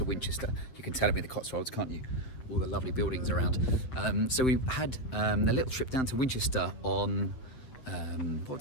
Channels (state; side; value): late; right; 8.0 ms